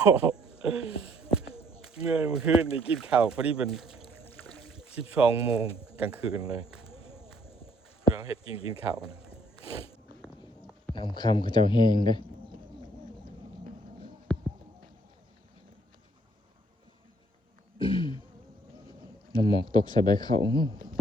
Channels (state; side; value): normal; both; correlation 0.64